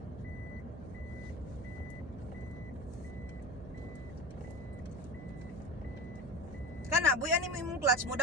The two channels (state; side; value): noise; right; hum, 12 dB below the sound